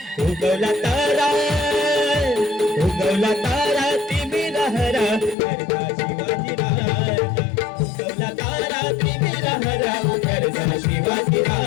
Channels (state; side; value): drops out; right; at 5.4 s